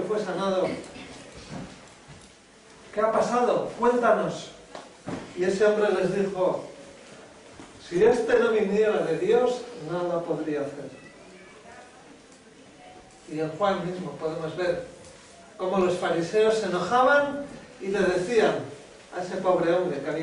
fue sanado, ¿qué ha pasado? Cuéntanos. Y ese hombre les dijo, si este no viniera de Dios, nada podría hacer. Y en Juan mismo podemos ver cómo los fariseos se enojaban y le decían a ese pobre hombre que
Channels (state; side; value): identical; both; correlation 1.00